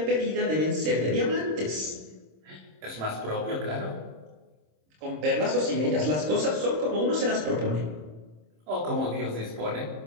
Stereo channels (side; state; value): left; late; 26 ms